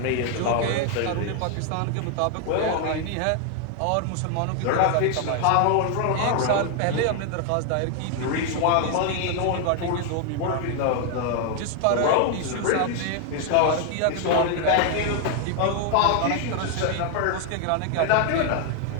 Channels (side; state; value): both; different; correlation 0.00